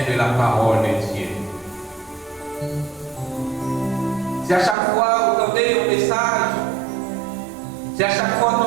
de la parole de Dieu. Si à chaque fois vous entendez un message, si à chaque fois vous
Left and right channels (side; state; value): left; drops out; at 4.8 s